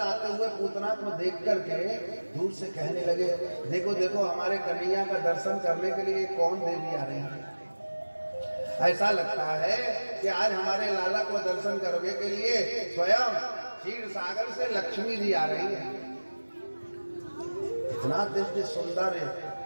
हुए पूतना को देख करके दूर से कहने लगे देखो देखो हमारे कन्हैया का दर्शन करने के लिए कौन देवी आ रही है। ऐसा लगता है कि आज हमारे लाला को दर्शन करने के लिए स्वयं क्षीर सागर से लक्ष्मी जी आ रही है। इतना दिव्य सुंदर है।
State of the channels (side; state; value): both; inverted; correlation -1.00